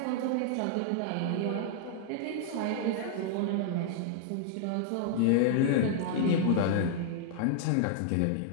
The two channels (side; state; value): both; different; correlation -0.01